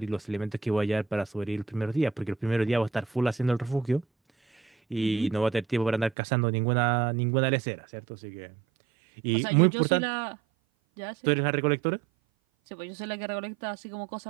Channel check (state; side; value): drops out; left; at 6.2 s